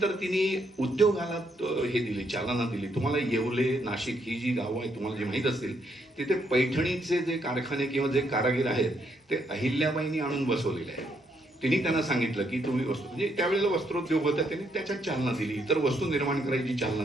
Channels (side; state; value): both; normal; correlation 0.74